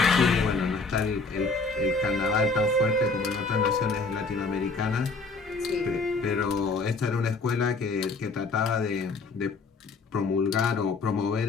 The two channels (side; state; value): right; quieter; 3.9 dB